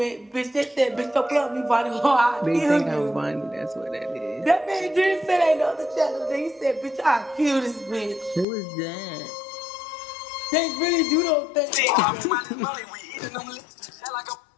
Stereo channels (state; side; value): drops out; right; at 8.5 s